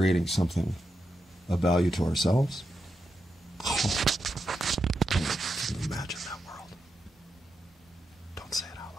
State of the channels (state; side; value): normal; both; correlation 0.86